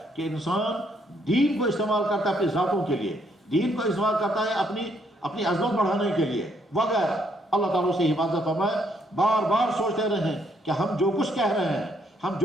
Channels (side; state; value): both; normal; correlation 0.71